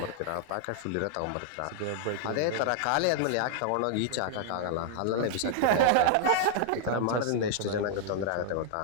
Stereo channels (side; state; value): both; different; correlation 0.00